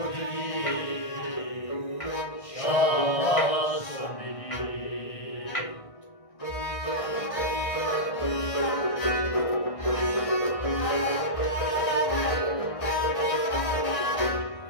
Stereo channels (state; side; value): late; right; 1.6 ms